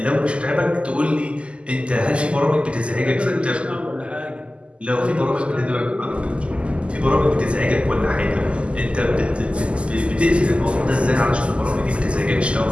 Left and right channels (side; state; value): left; late; 0.055 ms